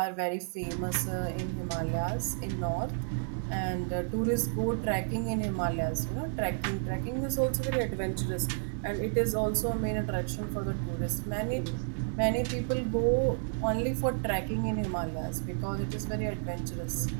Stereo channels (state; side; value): silent; left; 57 dB below the other